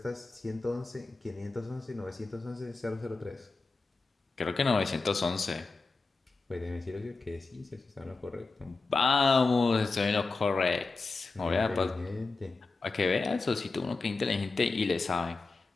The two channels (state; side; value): quieter; right; 3.8 dB